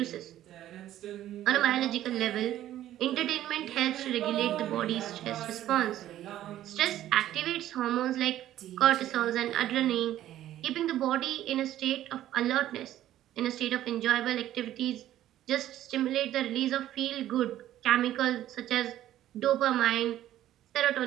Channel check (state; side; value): quieter; left; 12.9 dB